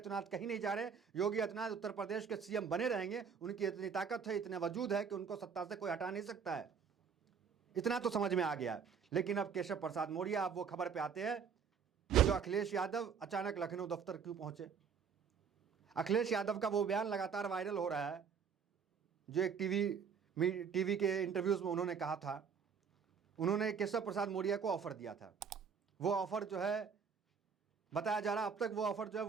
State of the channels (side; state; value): left; quieter; 6.5 dB